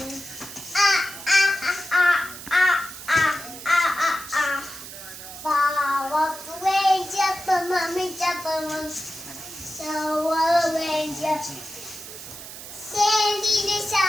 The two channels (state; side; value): noise; right; hiss, 13 dB below the sound